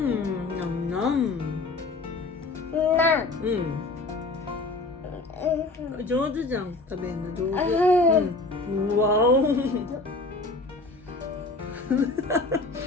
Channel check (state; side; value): quieter; right; 3.3 dB